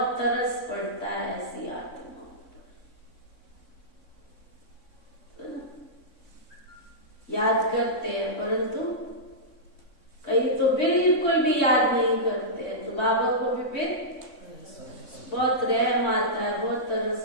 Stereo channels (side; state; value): right; late; 3.6 ms